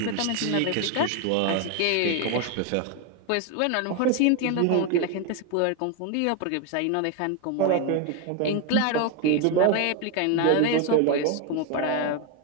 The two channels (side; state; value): both; different; correlation 0.01